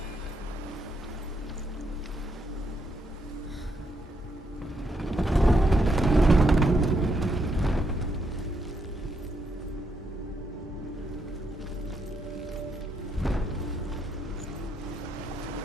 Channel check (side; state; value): both; normal; correlation 0.78